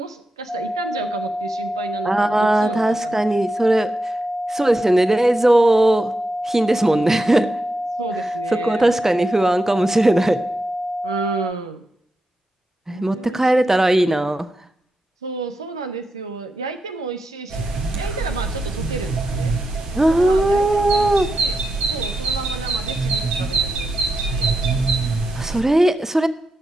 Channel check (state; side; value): normal; both; correlation 0.88